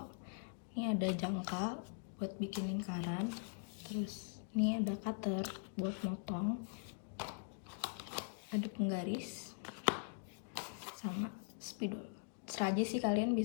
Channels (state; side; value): silent; right; digital silence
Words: Ini ada jangka buat bikin lingkaran, terus ini ada cutter buat motong, ada penggaris, sama spidol. Terserah aja sih, kalian